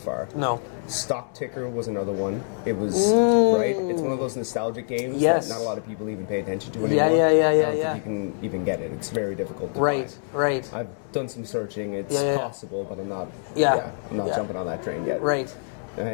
No. Stock Ticker was another one. It was right. It's one of those nostalgic games Yes. that not a lot of people even pay attention to Yeah, anymore. yeah, I don't yeah. think you can even get it. It's very difficult to Right, find. right. I've done some searching. It's Yeah, yeah. possible, but I'm not. Yeah. I'm not Yeah. jumping on that train yet. Right.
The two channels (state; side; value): silent; right; digital silence